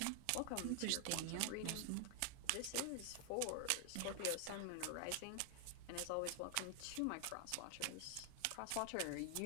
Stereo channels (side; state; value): both; different; correlation 0.00